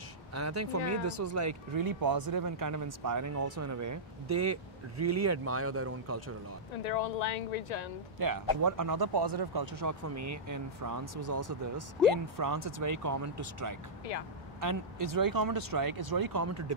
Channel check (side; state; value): both; normal; correlation -0.12